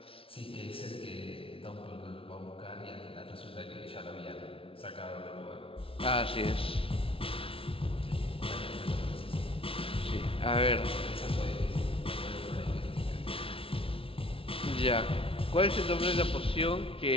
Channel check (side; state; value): right; late; 0.26 ms